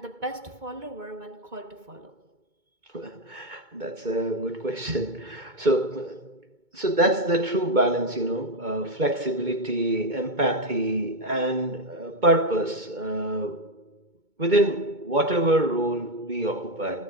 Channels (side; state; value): left; late; 2.2 ms